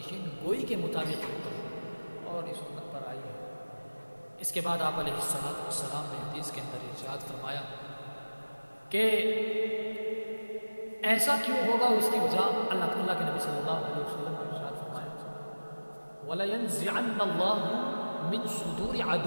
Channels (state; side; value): inverted; both; correlation -1.00